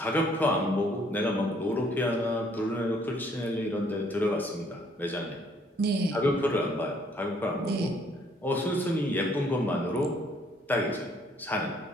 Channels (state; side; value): normal; both; correlation 0.64